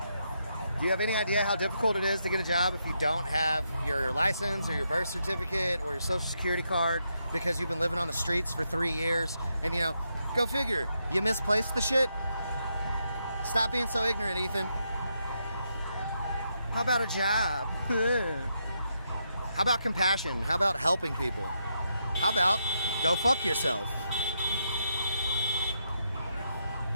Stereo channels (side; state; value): both; inverted; correlation -0.81